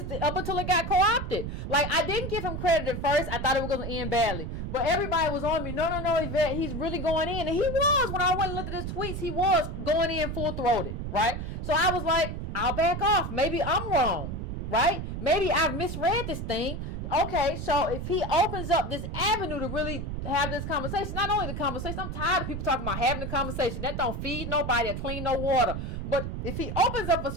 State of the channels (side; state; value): right; noise; rumble, 5 dB below the sound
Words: got co-opted. Like, I didn't give him credit at first. I thought it was going to end badly. But everybody was on me. No, Yvette, he's really going in. And he was. When I went and looked at his tweets, he was going in full-throated, right? So I was like, I'll back off. Maybe I'm wrong, right? Maybe I've misread this thing. Okay, so if he opens up this avenue to really have this conversation, not only the conversation, I'm tired of people talking about having the conversation. That don't feed nobody or clean no water. But if he opens up a